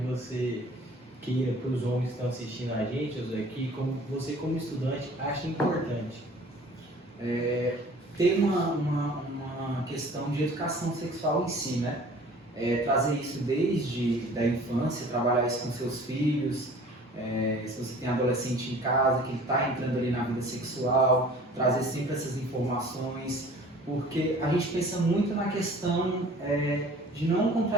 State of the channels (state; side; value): normal; both; correlation 0.48